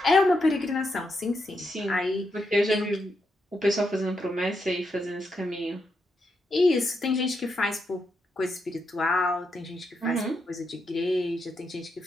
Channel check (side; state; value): both; normal; correlation 0.82